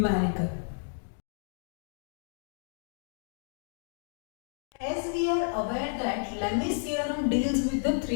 As we are aware that Lemmes theorem deals with the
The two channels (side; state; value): right; silent; digital silence